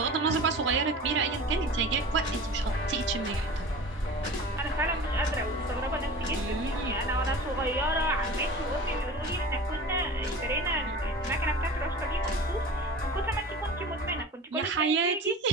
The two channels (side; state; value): both; normal; correlation 0.37